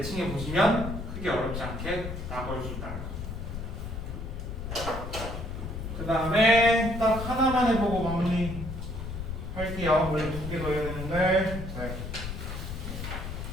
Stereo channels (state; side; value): noise; left; rumble, 6 dB below the sound